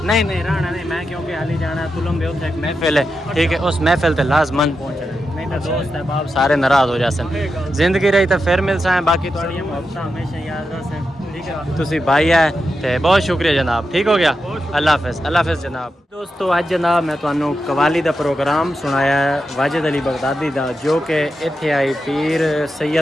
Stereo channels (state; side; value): normal; both; correlation 0.88